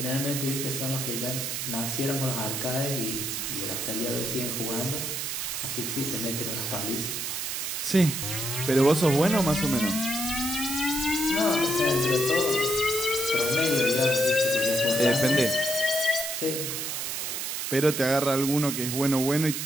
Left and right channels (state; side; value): noise; right; hiss, 3 dB below the sound